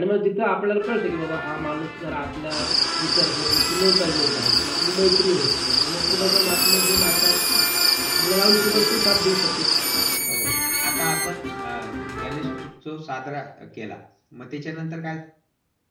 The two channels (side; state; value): both; identical; correlation 1.00